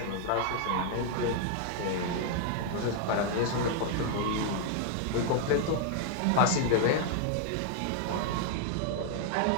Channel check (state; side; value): different; both; correlation 0.00